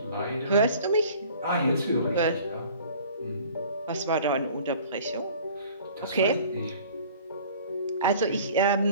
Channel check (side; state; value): both; inverted; correlation -0.48